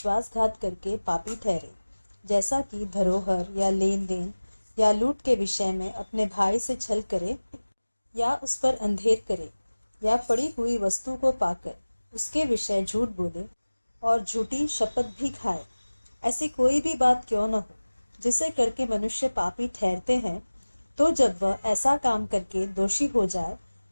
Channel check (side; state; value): both; inverted; correlation -1.00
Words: करके पापी ठहरे, जैसा कि धरोहर या लेन देन या लूट के विषय में अपने भाई से छल करे या उस पर अंधेर करे या पड़ी हुई वस्तु को पाकर उसके विषय झूठ बोले और झूठी शपथ भी खाए, ऐसी कोई भी बात क्यों न हो जिसे करके मनुष्य पापी ठहरते हैं, तो जब वह ऐसा काम करके दोषी हो जाए,